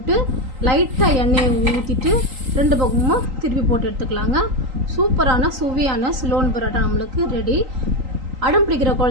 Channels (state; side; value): late; left; 3.8 ms